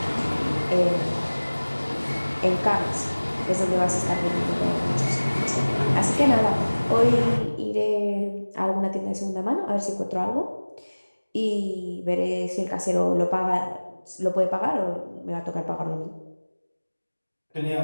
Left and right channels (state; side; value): inverted; both; correlation -1.00